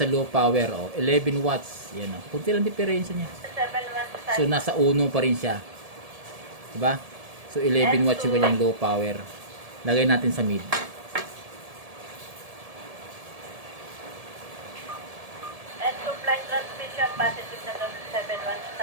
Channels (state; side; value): late; left; 1.7 ms